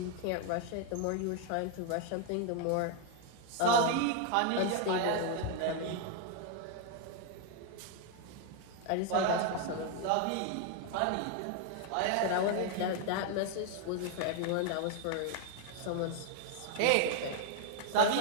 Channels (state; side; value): different; both; correlation 0.00